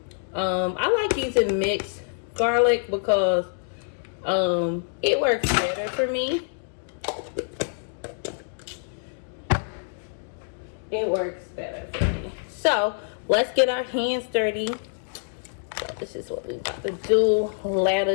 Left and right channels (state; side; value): silent; right; digital silence